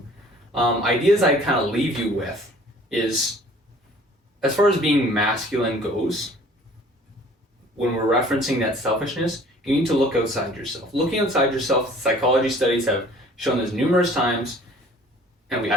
ideas I kind of leave you with is, as far as being masculine goes, when we're referencing that selfishness, you need to look outside yourself. Looking outside yourself, psychology studies have shown this numerous times, and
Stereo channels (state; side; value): normal; both; correlation 0.51